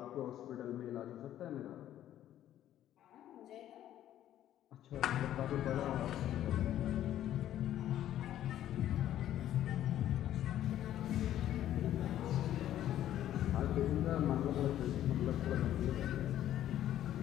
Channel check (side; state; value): right; quieter; 12.1 dB